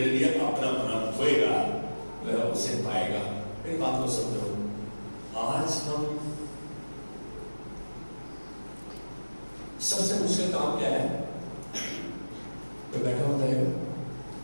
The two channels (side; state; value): both; inverted; correlation -1.00